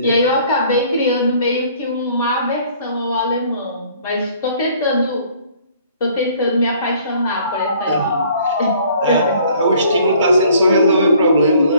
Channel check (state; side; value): inverted; both; correlation -0.57